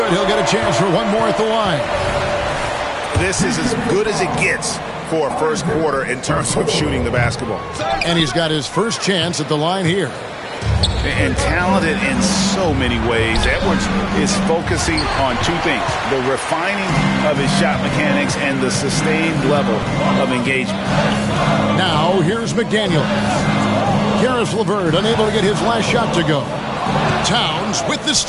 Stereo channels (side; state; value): both; identical; correlation 1.00